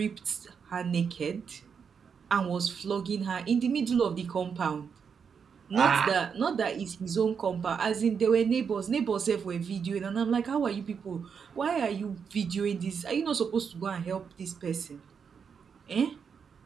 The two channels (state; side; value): quieter; left; 6.5 dB